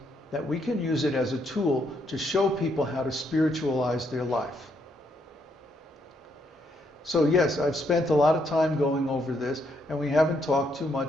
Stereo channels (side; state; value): both; normal; correlation 0.75